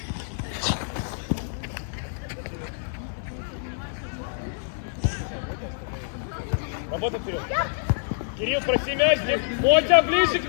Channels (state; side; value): silent; right; digital silence